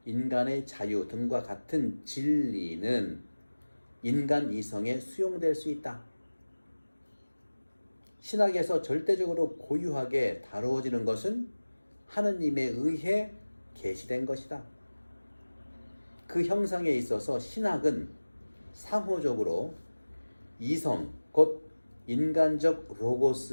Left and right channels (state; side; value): inverted; both; correlation -1.00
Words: 인간의 자유 등과 같은 진리는 인간 이성에 수용될 수 있다. 신학에서 절대적으로 고유하게 다루어지는 것은 하느님에 의해 계시된 것이다. 그 형상에 있어서 신학은 상호적으로 이성, 곧 인간적